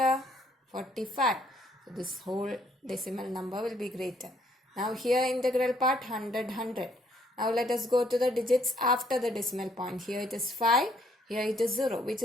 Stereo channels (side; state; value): both; normal; correlation 0.67